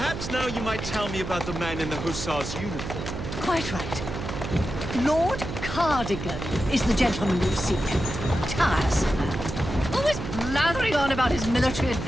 now you might tell me about the man in the hussar's uniform. Quite right. Lord Cardigan is the gentleman you seek. Tiresome man. Always blathering on about his military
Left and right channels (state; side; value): noise; right; hum, 7 dB below the sound